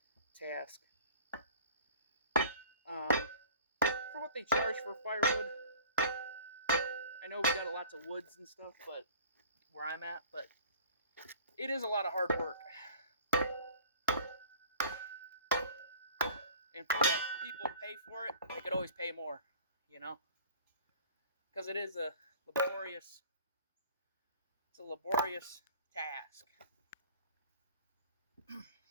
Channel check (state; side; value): inverted; both; correlation -0.45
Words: task. For what they charge for firewood, I know we got lots of woods and stuff, but where I'm at, but it is a lot of hard work. And if you want people to pay for it, they could always pay more, you know? Because it is a laborious, task.